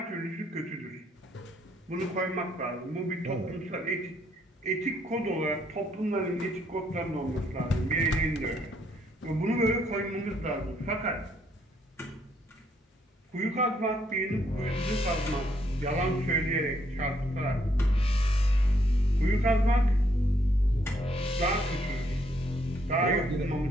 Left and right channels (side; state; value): both; normal; correlation 0.71